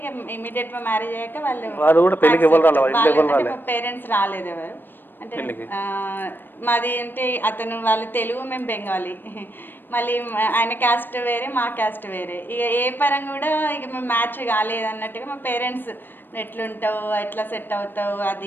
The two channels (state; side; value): late; right; 0.095 ms